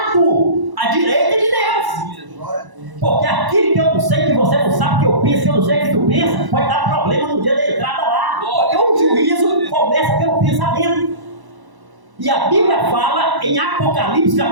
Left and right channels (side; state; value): left; late; 1.0 ms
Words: à direita de Deus. Porque aquilo que eu não sei, que você não sabe, que eu penso, que eu não sei que tu pensa, pode dar problema no dia da entrada lá. Porque o juízo começa pelo pensamento. E a Bíblia fala em Apocalipse